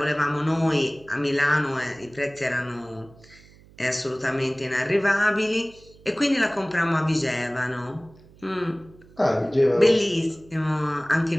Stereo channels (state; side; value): noise; right; hum, 25 dB below the sound